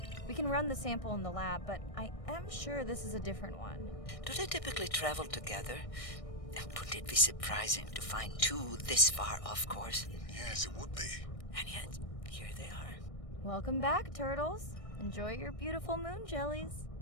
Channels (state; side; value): late; right; 1.6 ms